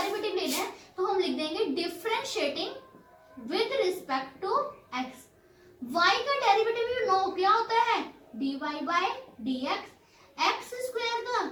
लेना है तो हम लिख देंगे differentiating with respect to x. y का डेरिवेटिव यू नो क्या होता है, dy by dx। X square का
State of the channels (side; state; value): both; identical; correlation 1.00